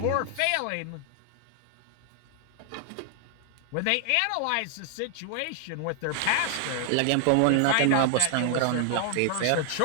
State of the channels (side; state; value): both; different; correlation 0.00